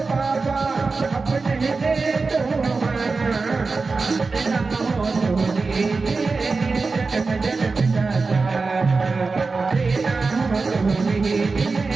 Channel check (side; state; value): left; quieter; 4.1 dB